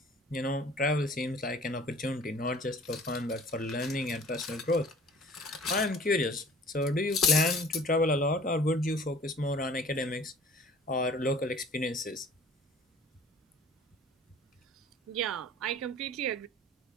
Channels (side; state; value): both; normal; correlation 0.49